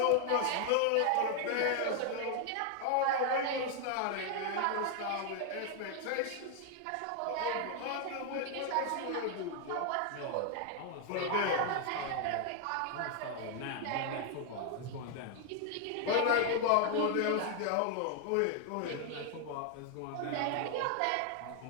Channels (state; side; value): different; both; correlation 0.00